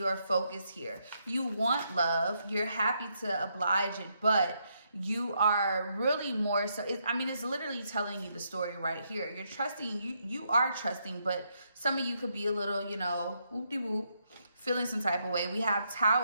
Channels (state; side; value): inverted; both; correlation -0.77